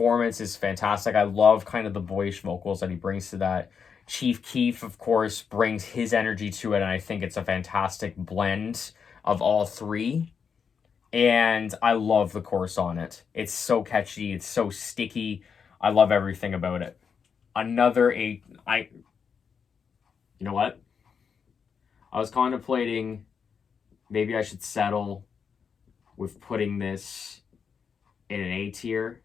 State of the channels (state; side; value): quieter; right; 6.5 dB